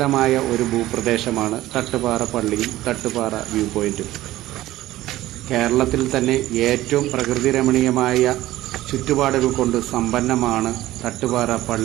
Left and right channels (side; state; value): left; quieter; 15.8 dB